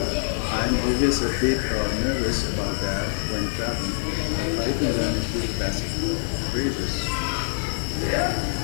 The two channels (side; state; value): right; silent; digital silence